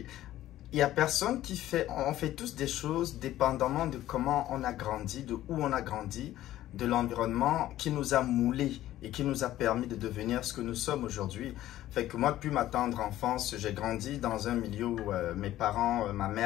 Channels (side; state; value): right; quieter; 14.0 dB